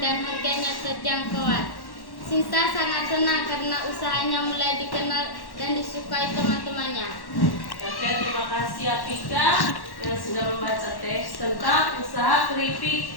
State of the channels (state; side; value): late; right; 1.1 ms